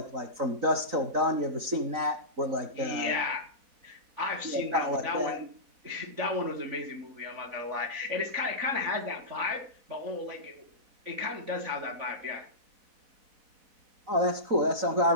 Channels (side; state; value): left; late; 4.1 ms